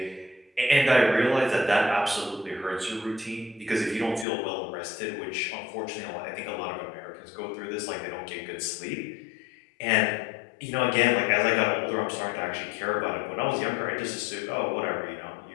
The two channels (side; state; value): right; drops out; at 4.2 s